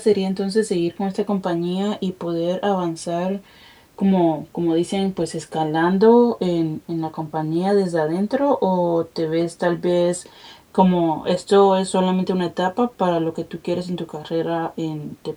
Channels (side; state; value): both; identical; correlation 1.00